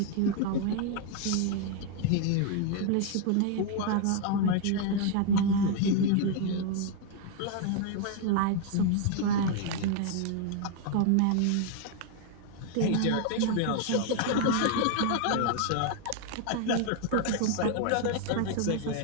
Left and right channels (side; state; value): both; different; correlation 0.00